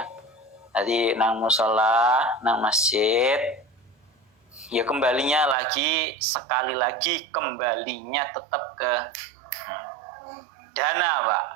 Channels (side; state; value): left; drops out; at 5.6 s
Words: Tadi nang musola, nang masjid, ya kembalinya lagi sekali lagi kembalinya tetap ke dana, Pak.